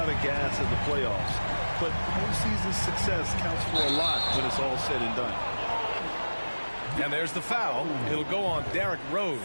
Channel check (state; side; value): inverted; both; correlation -1.00